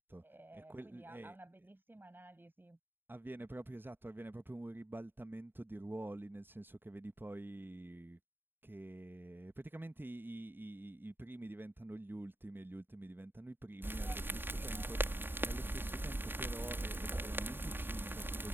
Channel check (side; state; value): left; late; 0.098 ms